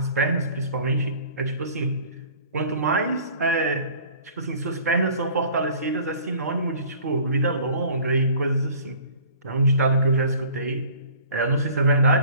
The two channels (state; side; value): inverted; both; correlation -0.49